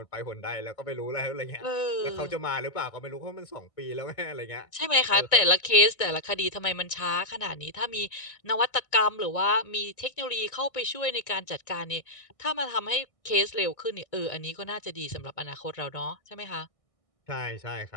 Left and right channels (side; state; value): right; late; 1.6 ms